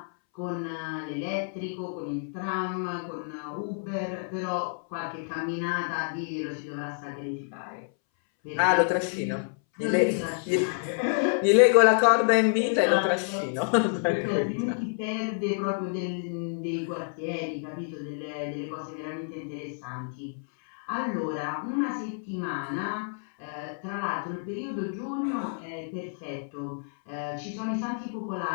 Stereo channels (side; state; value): right; silent; 59 dB below the other